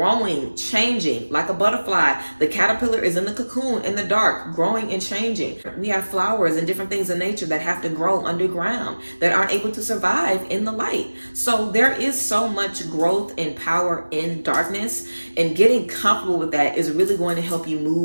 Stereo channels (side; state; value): both; inverted; correlation -1.00